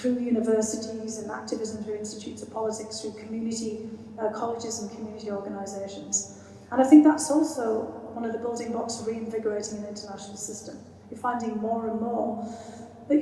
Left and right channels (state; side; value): identical; both; correlation 1.00